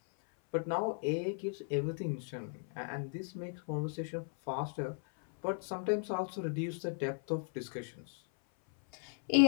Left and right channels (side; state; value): right; silent; 53 dB below the other